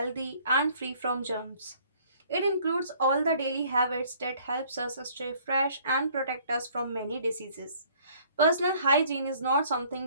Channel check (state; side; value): inverted; both; correlation -0.58